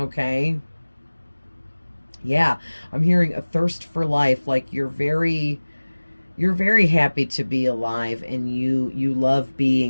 Yeah, I'm hearing a thirst for life, like you're very happy to be alive, and you love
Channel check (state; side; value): inverted; both; correlation -1.00